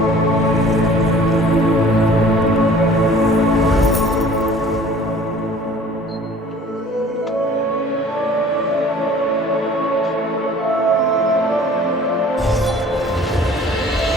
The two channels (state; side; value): normal; both; correlation 0.49